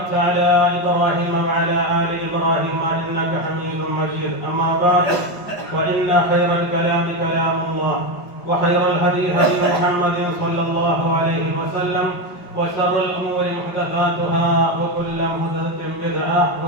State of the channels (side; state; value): right; late; 5.4 ms